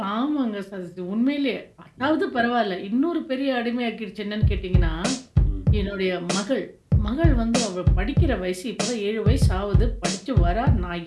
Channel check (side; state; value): both; identical; correlation 1.00